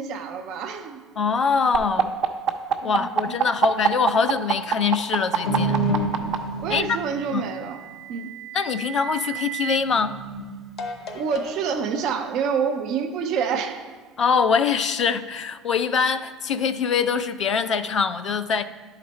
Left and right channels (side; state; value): both; normal; correlation 0.44